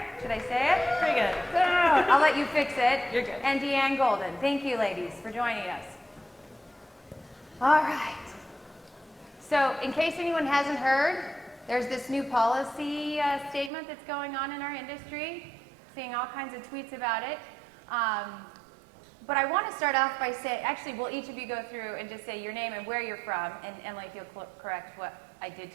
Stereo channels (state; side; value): drops out; left; at 13.7 s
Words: should I say it? Pretty good. Good. I'll let you fix it. You're good. And Deanne Golden. Thank you, ladies, for joining us. All right. So in case anyone hasn't heard, there's this new policy statement that's going on in our industry. Seeing all kinds of tweets about it. But I want to start off by saying, actually, will each of you go through and just say your name and where you're from, and Emily, if you'll correct what I did